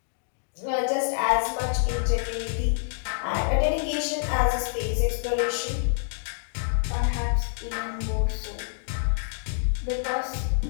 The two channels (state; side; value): silent; right; digital silence